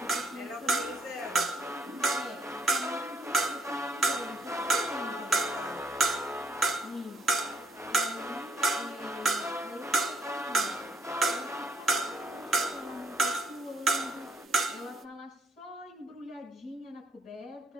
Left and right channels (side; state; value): both; normal; correlation 0.69